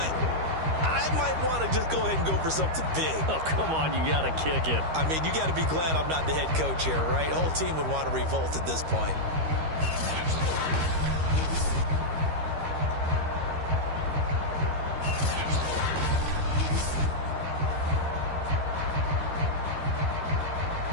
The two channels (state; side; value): late; left; 13 ms